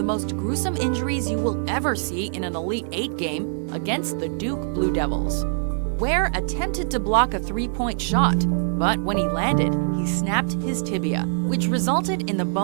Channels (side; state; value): left; silent; 59 dB below the other